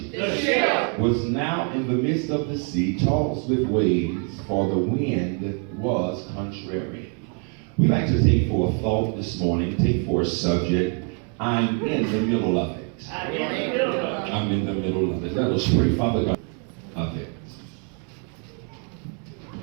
The ship was now in the midst of the sea, tossed with waves, for the wind was contrary. We like to take for a thought this morning, take for a subject, I'm in the middle of it. I'm in the middle of it. I'm in the middle of it. Let us pray. Father God, of it.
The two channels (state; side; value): quieter; left; 39.9 dB